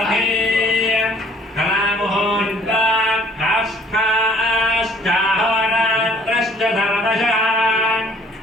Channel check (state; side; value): normal; both; correlation 0.57